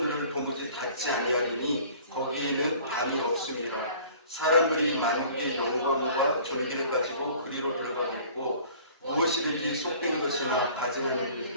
도무지 닫지 아니하리니 거기에는 담이 없음이라. 사람들이 만국의 영광과 존귀를 가지고 그리로 들어가겠고 무엇이든지 속되는 것이나 가증하는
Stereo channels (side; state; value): both; inverted; correlation -0.49